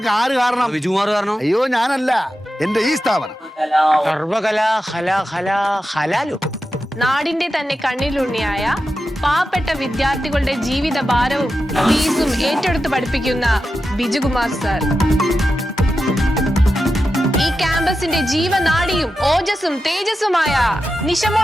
ആര് കാരണം? വിജുകുമാർ കാരണം. അയ്യോ ഞാനല്ല, എന്റെ ഈ സ്ഥാപനം. നാടിന്റെ തന്നെ കണ്ണിലുണ്ണിയായ പാവപ്പെട്ട വിദ്യാർത്ഥികളുടെ ജീവിത ഭാരവും ഫീസും ഏറ്റെടുത്ത് പഠിപ്പിക്കുന്ന ബിജുകുമാർ സർ ഈ ക്യാമ്പസിന്റെ ജീവനാഡിയും ഓജസ്സും തേജസ്സുമായ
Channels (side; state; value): both; normal; correlation 0.91